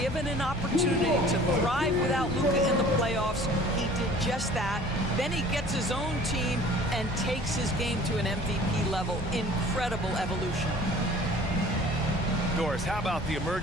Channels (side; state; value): both; normal; correlation 0.48